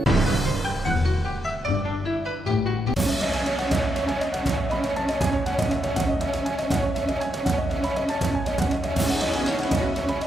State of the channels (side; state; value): both; normal; correlation 0.83